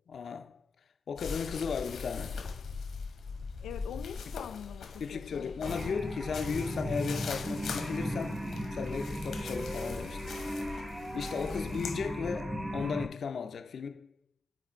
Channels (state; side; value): quieter; right; 3.5 dB